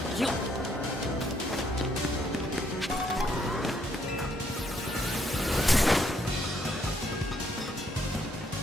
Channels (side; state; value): both; normal; correlation 0.71